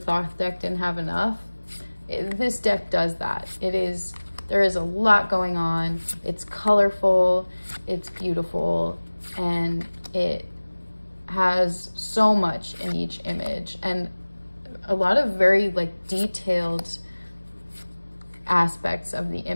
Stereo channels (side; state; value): both; inverted; correlation -1.00